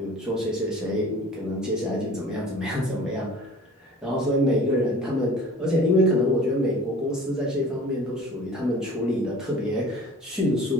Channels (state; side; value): normal; both; correlation 0.44